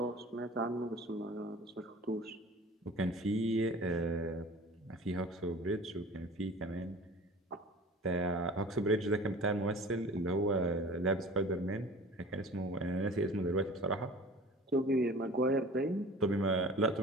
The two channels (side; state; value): both; normal; correlation 0.42